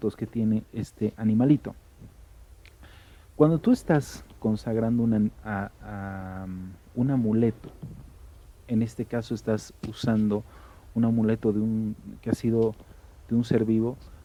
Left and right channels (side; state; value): both; identical; correlation 1.00